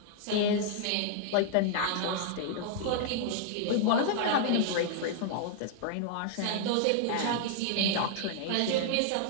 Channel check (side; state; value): both; different; correlation -0.01